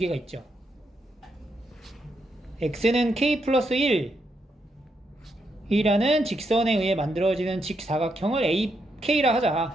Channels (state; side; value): normal; both; correlation 0.80